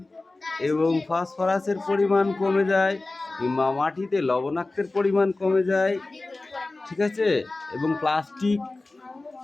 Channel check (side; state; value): right; quieter; 3.2 dB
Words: এবং ফসফরাসের পরিমাণ কমে যায়, কিংবা মাটিতে লবণাক্তের পরিমাণ কমে যায়, ঠিক আছে, এবং প্লাস্টিক